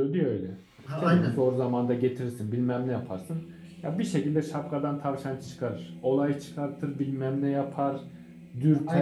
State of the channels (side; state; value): both; identical; correlation 1.00